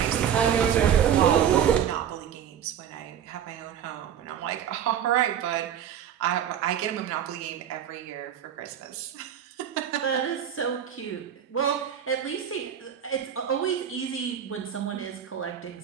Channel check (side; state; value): left; quieter; 9.2 dB